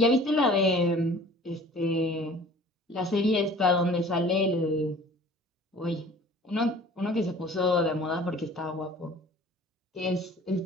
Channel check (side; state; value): both; normal; correlation 0.47